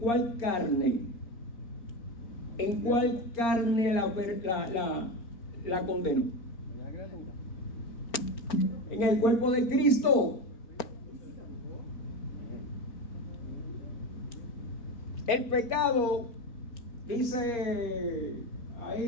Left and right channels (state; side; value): late; right; 4.4 ms